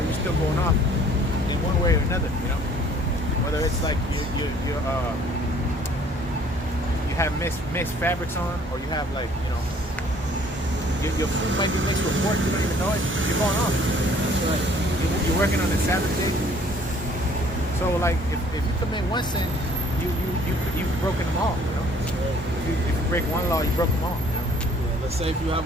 still going off in one way or another, you know? Whether it's like you have mixed fabrics on, or you have, like, you know, your food might be mixed with pork, you don't even know it, you're going off. That's right. You're working on the Sabbath day. So, like, if you commit one sin, you've broken them all, you know? If you break one law, you broke them all, you know? Yeah, let's say if you have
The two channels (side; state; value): both; normal; correlation 0.57